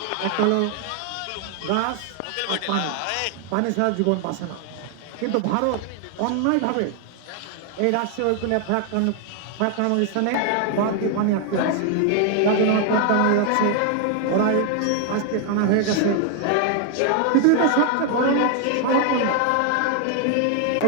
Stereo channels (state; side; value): different; both; correlation 0.00